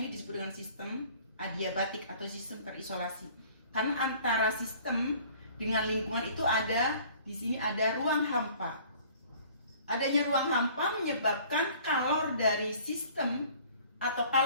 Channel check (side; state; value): both; inverted; correlation -0.52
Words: disebut dengan sistem adiabatik atau sistem terisolasi. Karena antara sistem dengan lingkungan itu di sini ada ruang hampa. Adanya ruang hampa menyebabkan kalor dari sistem atau